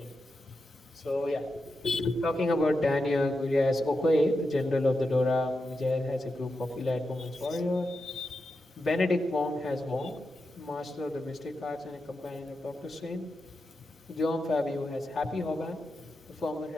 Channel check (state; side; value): normal; both; correlation 0.88